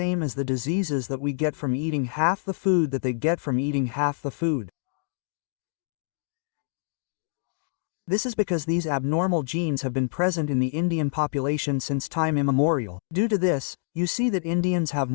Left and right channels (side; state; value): right; silent; digital silence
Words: as the diseases that we get from eating half the food that they get from eating half the food. This is because these abnormal genes have been present in the Indian population since time immemorial. Due to this, you see that Indians have